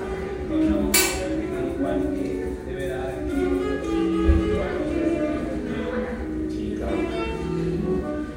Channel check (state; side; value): identical; both; correlation 1.00